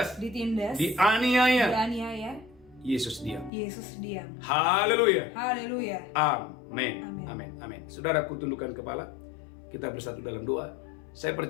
Ditindas, dianiaya, dianiaya, Yesus diam. Yesus diam. Haleluya. Haleluya. Amin. Amin. Amin. Amin. Saudaraku, tundukkan kepala. Kita bersatu dalam doa. Saya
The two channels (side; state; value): right; drops out; at 3.5 s